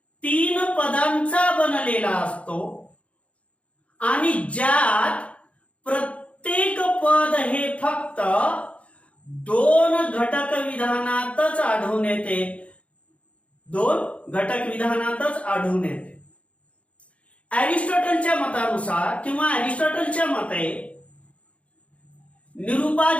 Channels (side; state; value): right; late; 0.063 ms